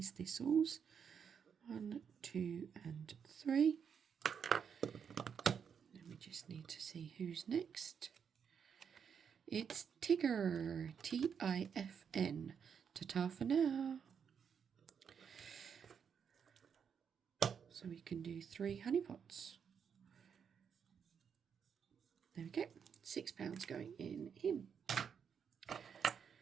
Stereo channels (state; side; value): quieter; left; 7.1 dB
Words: thistles. 1, 2 and 3. Then we just need to see who's next. It's Tigger, Tifn. Ta-ta for now. So we can do 3 honey pots. There we go. £6 going in him.